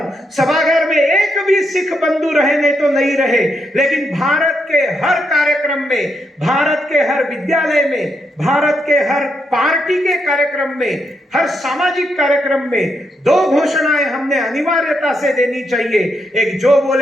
सभागार में एक भी सिख बंधु रहे नहीं तो नहीं रहे, लेकिन भारत के हर कार्यक्रम में, भारत के हर विद्यालय में, भारत के हर पार्टी के कार्यक्रम में, हर सामाजिक कार्यक्रम में दो घोषणाएं हमने अनिवार्यता से देनी चाहिए। एक, जो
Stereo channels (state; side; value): normal; both; correlation 0.80